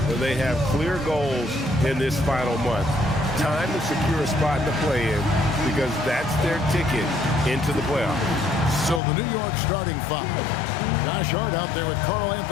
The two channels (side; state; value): right; drops out; at 9.0 s